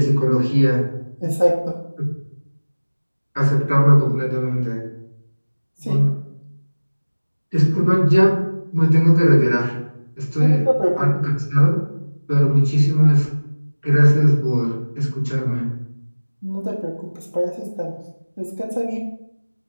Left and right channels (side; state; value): both; inverted; correlation -1.00